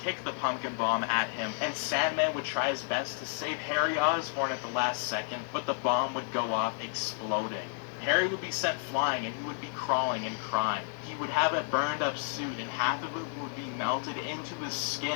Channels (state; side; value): silent; right; 57 dB below the other